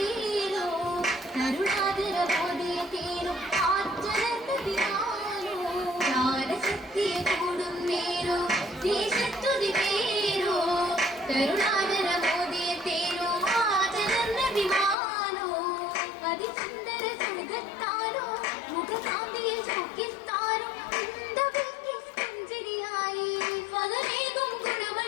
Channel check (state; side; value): drops out; right; at 15.0 s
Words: കരുണാകര മോദിയ തേരോ ആറ്റരന്തതിയാനോ ജ്ഞാനശക്തിയ കൂടും നേരോ ദേശത്തുതി പേരോ കരുണാകര മോദിയ തേരോ ആറ്റരന്തതിമാനോ അതിസുന്ദര സുഖത്താരോ മുഖകാന്തിയിൽ ചുക്കിത്താരോ